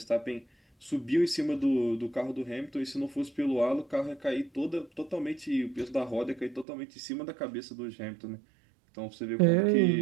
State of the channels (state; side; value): drops out; left; at 6.7 s